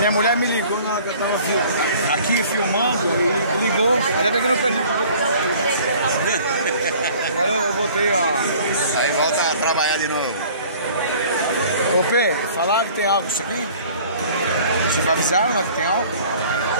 mulher me ligou na hora que eu tava aqui filmando e ligou. Ainda bem que eu não perdi. Agora eu voltei, ó. Aí volta a trabalhar de novo. Ô P, falaram que tem álcool isso aqui? Vocês avisaram lá que tem álcool?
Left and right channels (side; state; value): both; inverted; correlation -0.50